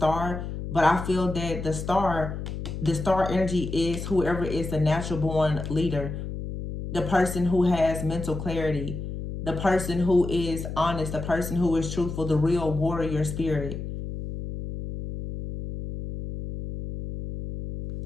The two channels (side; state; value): left; noise; hum, 6 dB below the sound